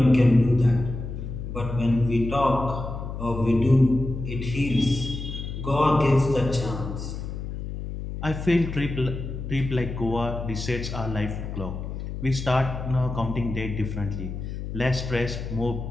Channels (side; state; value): left; noise; hum, 7 dB below the sound